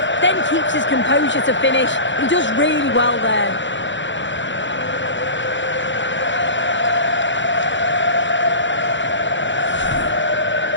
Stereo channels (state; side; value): late; right; 0.54 ms